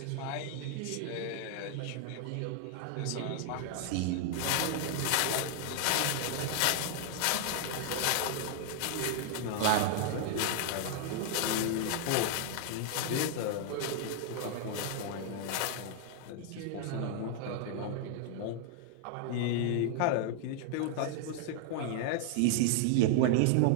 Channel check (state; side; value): different; both; correlation 0.00